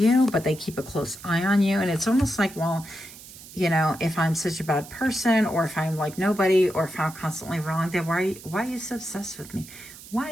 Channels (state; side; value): noise; right; hiss, 17 dB below the sound